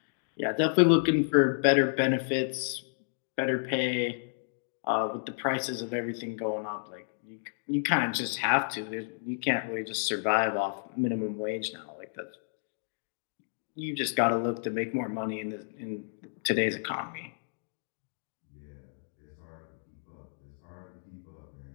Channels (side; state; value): right; silent; digital silence